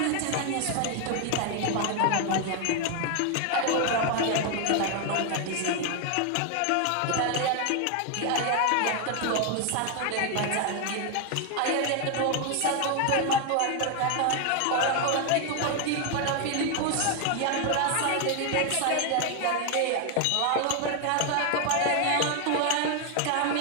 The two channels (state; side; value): different; both; correlation 0.01